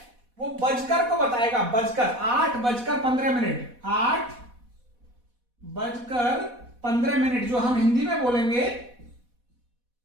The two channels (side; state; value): left; late; 4.1 ms